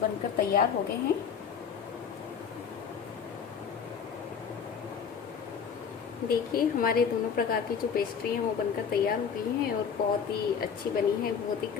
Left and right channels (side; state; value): right; quieter; 6.9 dB